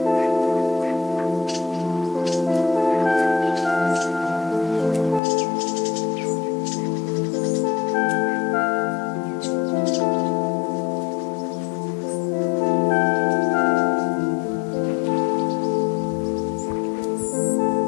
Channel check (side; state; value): right; drops out; at 5.2 s